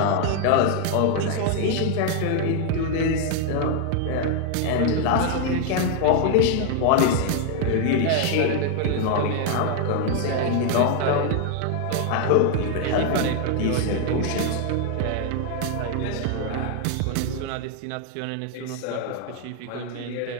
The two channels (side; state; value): both; different; correlation 0.00